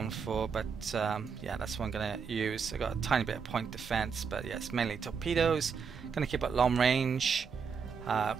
for, but yeah, that's what I'm going to use. I got a tiny bit of point defense, but yeah, it's mainly torpedoes. Going to keep at long range,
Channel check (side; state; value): left; quieter; 6.1 dB